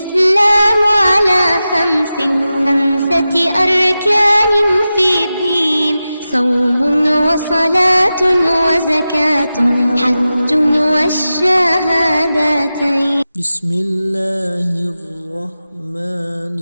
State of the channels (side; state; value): both; inverted; correlation -0.93